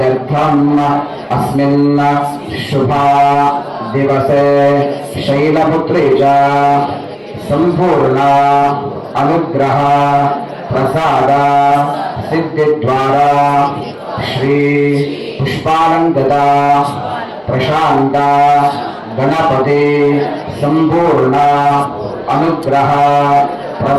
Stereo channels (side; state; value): both; identical; correlation 1.00